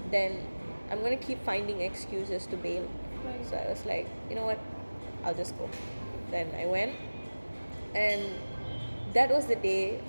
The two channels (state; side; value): inverted; both; correlation -1.00